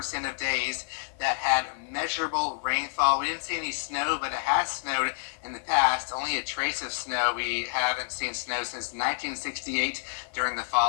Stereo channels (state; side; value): silent; right; 59 dB below the other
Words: of days that had measurable rainfall. We didn't see any snow, but it has snowed in the past. Only a trace of snow. We haven't seen snow since 1968 during the